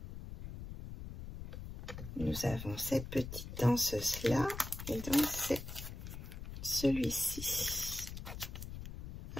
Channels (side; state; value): left; noise; rumble, 9 dB below the sound